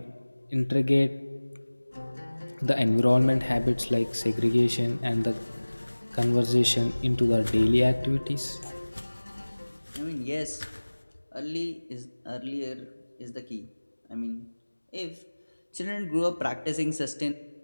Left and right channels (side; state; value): both; inverted; correlation -1.00